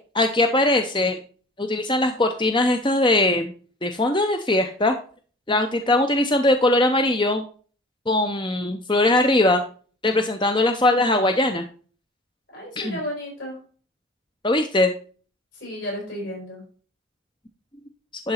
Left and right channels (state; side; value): normal; both; correlation 0.43